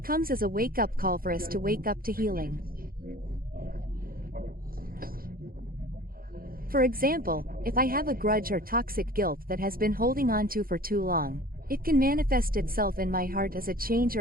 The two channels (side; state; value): left; late; 0.42 ms